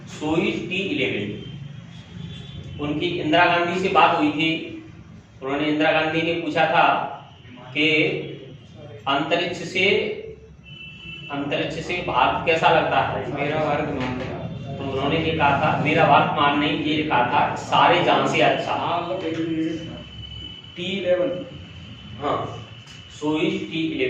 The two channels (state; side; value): identical; both; correlation 1.00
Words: Soyuz T11। उनकी इंदिरा गांधी से बात हुई थी, उन्होंने, इंदिरा गांधी ने पूछा था कि अंतरिक्ष से भारत कैसा लगता है? मेरा भारत मान लिया। तो उन्होंने ये कहा था, मेरा भारत मान नहीं, ये कहा था सारे जहां से अच्छा। T11। हाँ, सोयूज